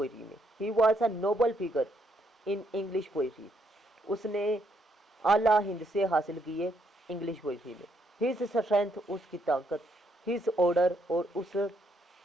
में। ही was a Nobel figure in English poetry, उसने आला हिंद से हासिल किए इंग्लिश पोइट्री में। हिज स्ट्रेंथ, उसकी ताकत, हिज ऑर्डर और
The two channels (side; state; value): both; normal; correlation 0.73